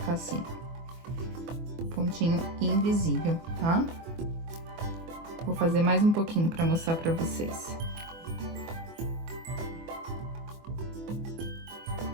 assim. Pontinho invisível, tá? Vou fazer mais um pouquinho pra mostrar pra vocês.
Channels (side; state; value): left; late; 24 ms